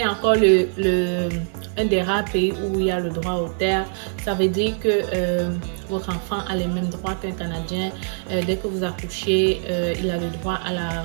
encore un des rares pays où il y a le droit aux terres. Ça veut dire que votre enfant a les mêmes droits qu'un Canadien. Dès que vous accouchez, il a le droit à la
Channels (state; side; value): silent; left; digital silence